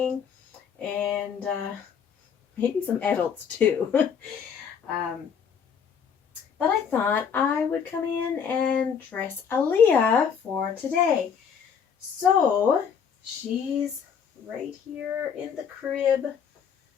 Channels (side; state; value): right; quieter; 7.1 dB